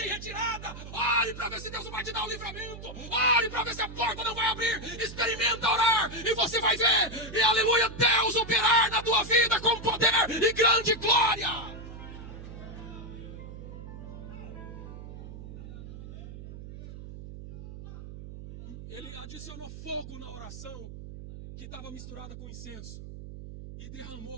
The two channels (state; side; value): noise; right; hum, 12 dB below the sound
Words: em retirada. Ore para ver se Deus não vai te dar o livramento. Ore para ver se a porta não vai abrir. Experimenta orar e você vai ver. E aleluia, Deus operar na tua vida com poder e grande glória. Ele adicionou fogo na oração, que estava misturada com incenso e derramou